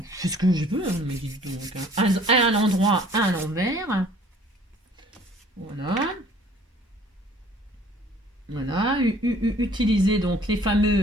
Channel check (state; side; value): normal; both; correlation 0.54